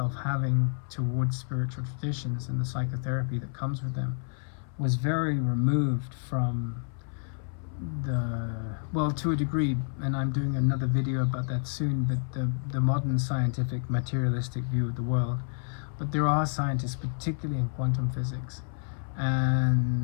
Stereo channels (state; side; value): silent; right; 58 dB below the other